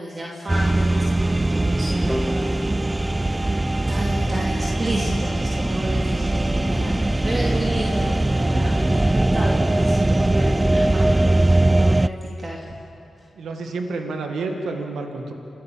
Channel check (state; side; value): normal; both; correlation 0.98